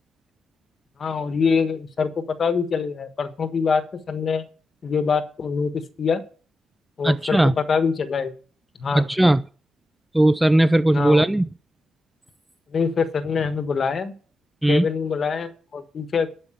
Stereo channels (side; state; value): both; normal; correlation 0.90